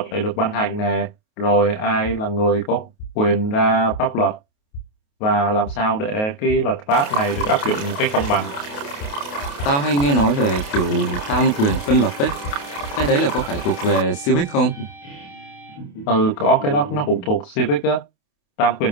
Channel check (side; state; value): right; late; 28 ms